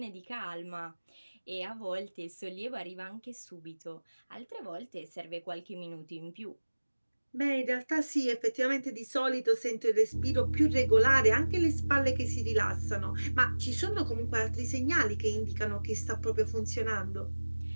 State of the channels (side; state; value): both; inverted; correlation -1.00